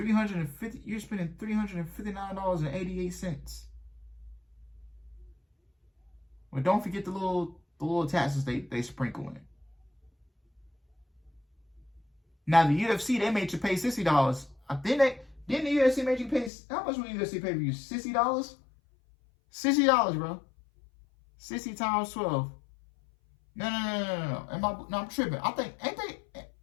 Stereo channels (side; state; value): right; drops out; at 16.5 s